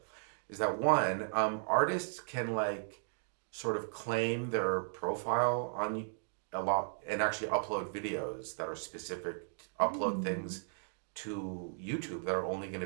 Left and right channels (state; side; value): silent; left; digital silence